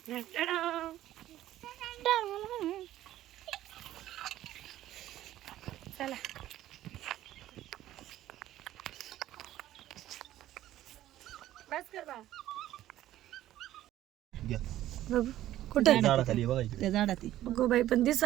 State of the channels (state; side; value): quieter; left; 13.7 dB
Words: चला बस कर बा. बघू कुठे झाडाखाली बघा इकडे. त्या झाडात गो बाई पण